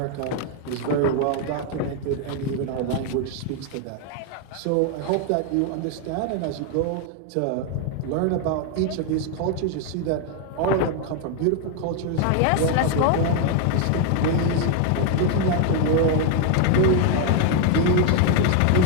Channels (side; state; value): both; different; correlation 0.01